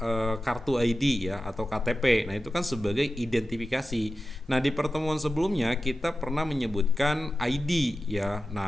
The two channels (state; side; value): normal; both; correlation 0.93